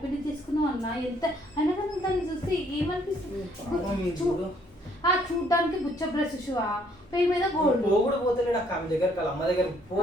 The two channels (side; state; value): both; normal; correlation 0.65